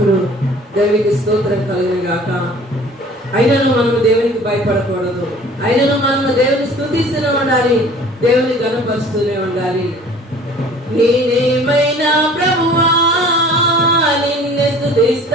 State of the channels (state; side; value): normal; both; correlation 0.48